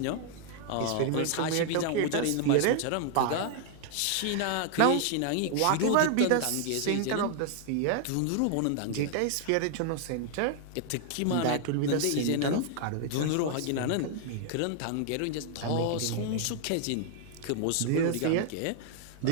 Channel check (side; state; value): both; different; correlation 0.00